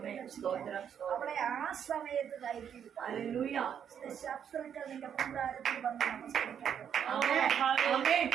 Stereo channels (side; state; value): left; quieter; 8.4 dB